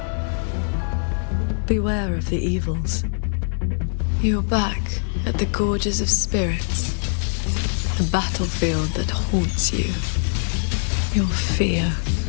beware of the evils. You're back at the Gorges of Spirits, the battlefield that haunts you. Your fear,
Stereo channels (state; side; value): silent; right; digital silence